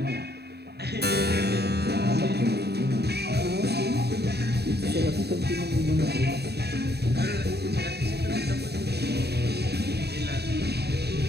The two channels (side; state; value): left; late; 0.48 ms